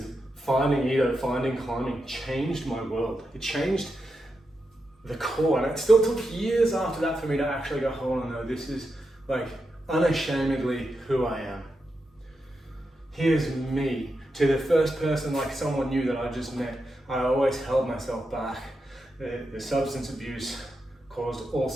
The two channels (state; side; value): normal; both; correlation 0.87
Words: finding Ito, finding climbing changed my world. It changed the core, and it still took years after that for me to actually go, hold on, no, this is like unashamedly who I am. Here's me. To the first person, like someone new that I just met, I always held myself back. The substance abuse caused all